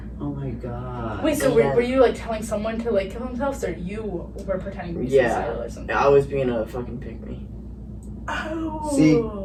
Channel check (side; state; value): both; identical; correlation 1.00